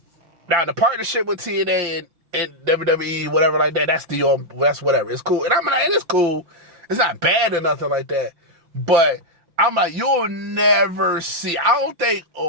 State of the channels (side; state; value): left; late; 5.8 ms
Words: now the partnership with TNA and WWE, whatever like that, that's whatever. It's cool. And I'm like, it's cool. It's not bad or nothing like that. But I'm like, you'll never see, I don't think